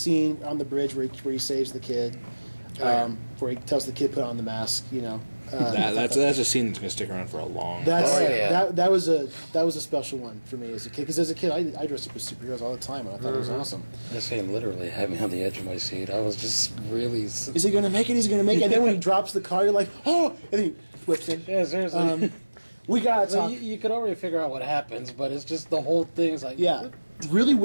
on the bridge where he saves the kid, where he tells the kid put on the mask. You know, That's a scene that's going to stick around for a long time. That was a special one for me as a kid, because as a kid I dressed up as superheroes all the time, and I thought it was awesome. That scene literally had me on the edge of my seat. I was just really. Is he going to make it? Is he going to make it? And then when he drops the car, you're like, "Oh!" And then he flips it. Yeah, seriously. We got to talk. You could already figure out what happens, but it's just the whole thing is like. Yeah, really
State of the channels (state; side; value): inverted; both; correlation -1.00